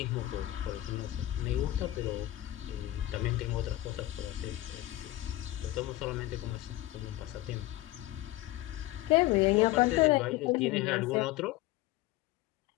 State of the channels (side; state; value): right; quieter; 16.3 dB